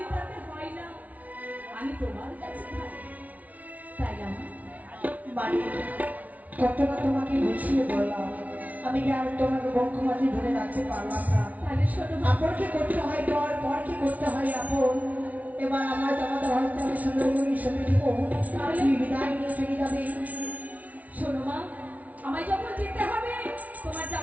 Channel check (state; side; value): late; left; 0.071 ms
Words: তাতে হয় না। আমি তোমার কাছে থাকি, তাই না বাড়ি কতটা তোমাকে বুঝিয়ে বললাম, আমি কি আর তোমাকে বক্ষমাঝি ধরে রাখতে পারলাম না? তাহলে শোনো, আপনকে করতে হয় পর, পরকে করতে হয় আপন। এবার আমার জামাতা হয়তো আমি সুন্দরী সঙ্গে দিব, তুমি বিদায় নিয়ে চলে যাবে। শোনো মা, আমায় যখন যেতে হবে তোমার